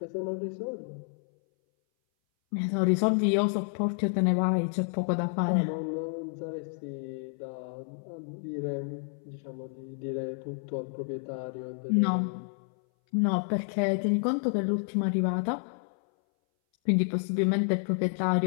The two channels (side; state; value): right; silent; 58 dB below the other